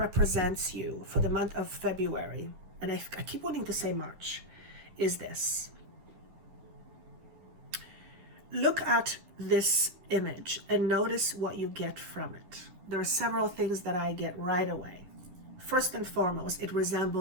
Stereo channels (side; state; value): left; late; 11 ms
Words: you for the month of February, and I keep wanting to say March, is this. Look at this image and notice what you get from it. There are several things that I get right away. First and foremost, it